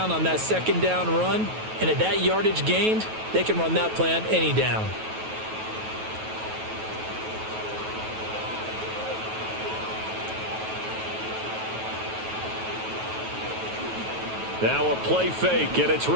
on that second down run. And at that yardage gained, they can run that play on any down. Now a play fake, and it's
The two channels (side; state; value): left; late; 9.2 ms